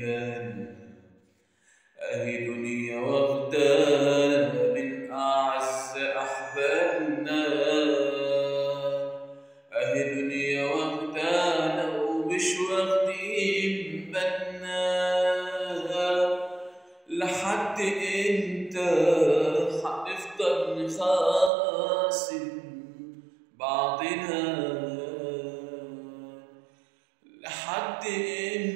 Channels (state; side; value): drops out; left; at 21.5 s